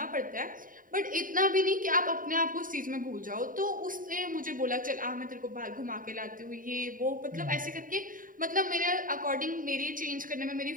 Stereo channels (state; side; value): late; left; 0.40 ms